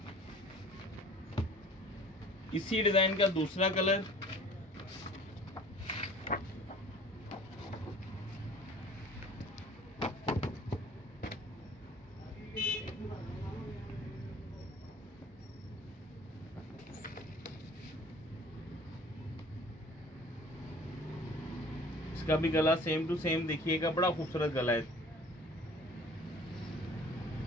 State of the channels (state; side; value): normal; both; correlation 0.48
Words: इसी डिजाइन का दूसरा कलर, इसका भी गला सेम टू सेम देखिएगा, बड़ा खूबसूरत गला है।